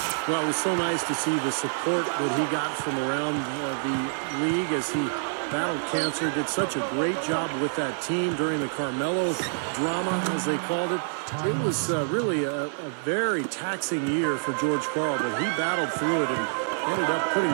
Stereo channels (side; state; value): left; silent; 60 dB below the other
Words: Well, it was so nice to see the support that he got from around the league as he battled cancer, did such a great job with that team during the Carmelo drama, as they called it. It was really a very taxing year for George Karl, but he battled through it and ended up putting